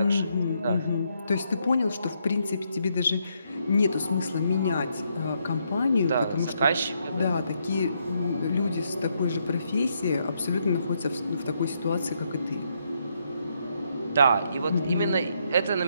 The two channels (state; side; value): inverted; both; correlation -0.76